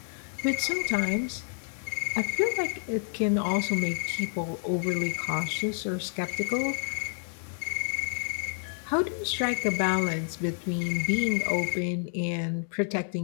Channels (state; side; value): silent; right; 58 dB below the other